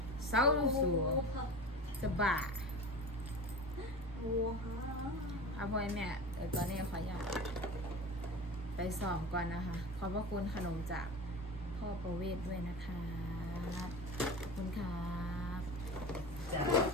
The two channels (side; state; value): both; normal; correlation 0.32